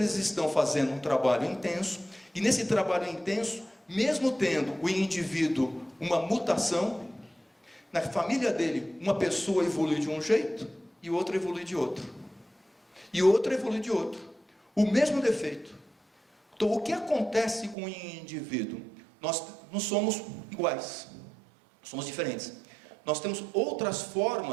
estão fazendo um trabalho intenso, e nesse trabalho intenso, mesmo tendo o indivíduo uma mutação, na família dele, uma pessoa evolui de um jeito, e outra evolui de outro. E outra evolui de outro. O mesmo defeito. Então, o que acontece com o indivíduo? Nós não somos iguais. Somos diferentes. Nós temos outras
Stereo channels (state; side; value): drops out; left; at 17.8 s